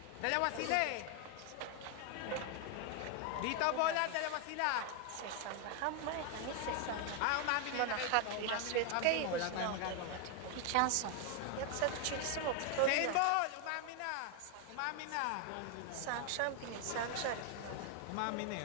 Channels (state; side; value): different; both; correlation 0.01